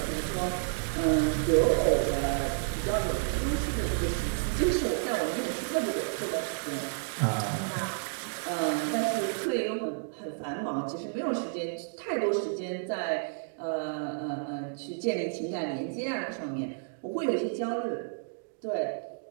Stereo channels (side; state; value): left; silent; digital silence